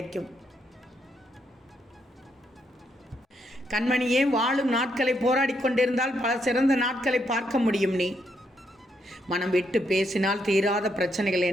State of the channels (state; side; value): normal; both; correlation 0.77